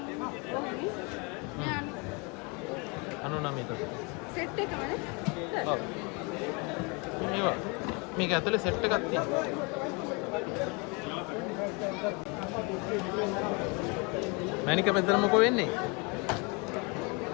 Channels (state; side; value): quieter; right; 30.7 dB